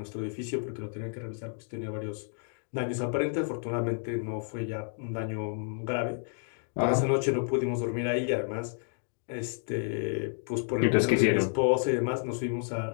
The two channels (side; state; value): right; silent; 57 dB below the other